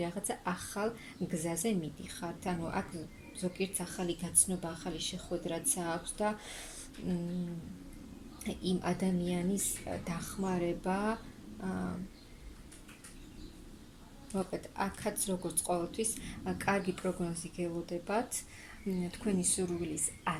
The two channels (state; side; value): identical; both; correlation 1.00